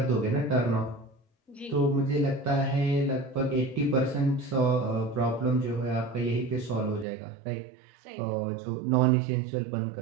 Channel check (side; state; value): left; drops out; at 7.1 s